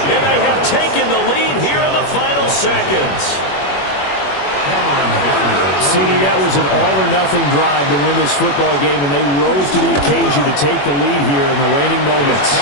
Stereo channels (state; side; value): late; right; 21 ms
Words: And they have taken the lead here in the final seconds. CD, that was an all-or-nothing drive to win this football game, and they rose to the occasion to take the lead here in the waning moments.